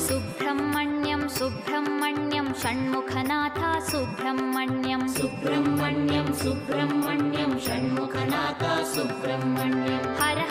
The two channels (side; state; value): both; identical; correlation 1.00